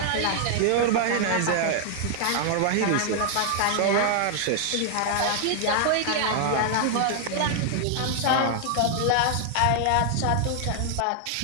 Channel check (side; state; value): both; different; correlation 0.00